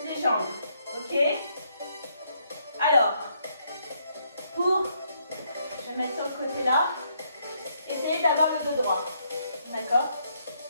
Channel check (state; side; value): inverted; both; correlation -0.72